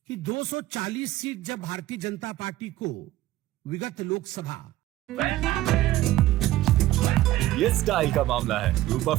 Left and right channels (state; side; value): quieter; left; 15.4 dB